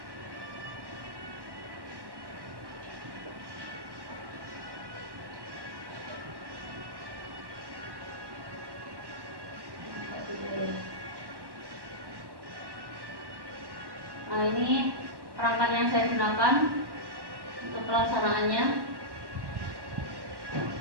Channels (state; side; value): late; left; 1.1 ms